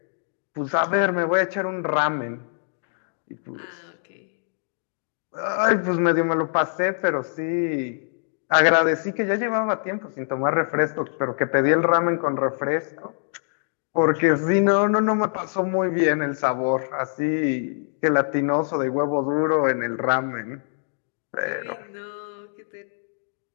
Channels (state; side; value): silent; right; digital silence